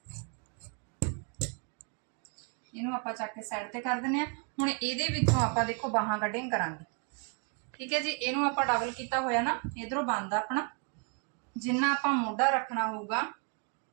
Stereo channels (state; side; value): quieter; left; 38.3 dB